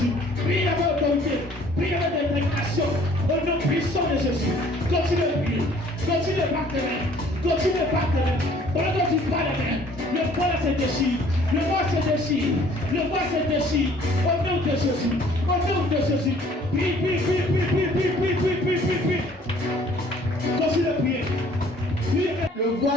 Prie avec autorité, prie avec détermination. Au nom puissant de Jésus. Continue de prier, continue de battre les mains, continue de battre les mains. Pendant que tu bats les mains, le voile se déchire, le voile se déchire, le voile se déchire. Au nom de Jésus, au nom de Jésus. Prie. Continue de prier. Le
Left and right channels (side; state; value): both; normal; correlation 0.56